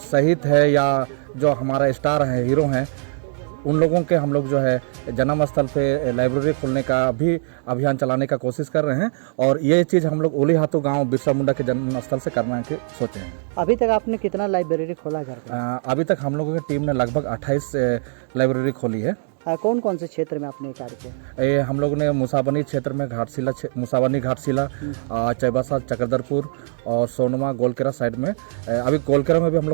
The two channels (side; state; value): left; silent; digital silence